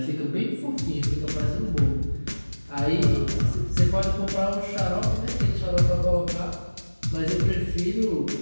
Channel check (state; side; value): inverted; both; correlation -1.00